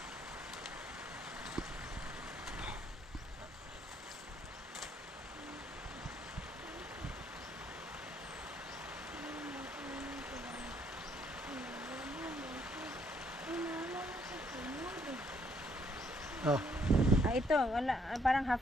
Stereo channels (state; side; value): normal; both; correlation 0.69